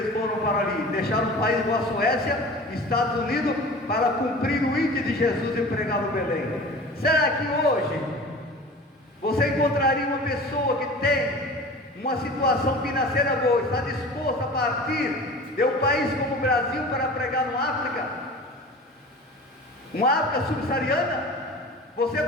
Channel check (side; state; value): both; normal; correlation 0.38